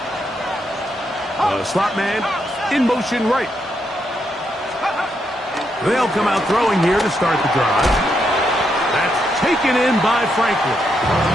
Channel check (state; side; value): normal; both; correlation 0.80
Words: Slot man in motion right. They'll come out throwing here to start the drive. That's taken in by Franklin.